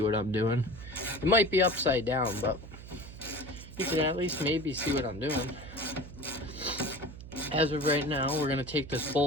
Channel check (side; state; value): right; noise; hum, 14 dB below the sound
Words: what I'm doing. It might be upside down, but you can at least maybe see what I'm doing. As of right now, we're gonna take this